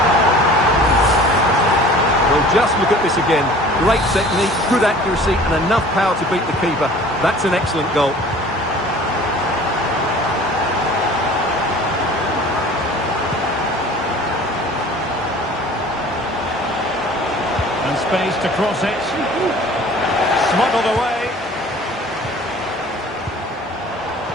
Well, just look at this again. Great technique, good accuracy, and enough power to beat the keeper. That's an excellent goal. And space to cross it. Smuggled away.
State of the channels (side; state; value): both; normal; correlation 0.46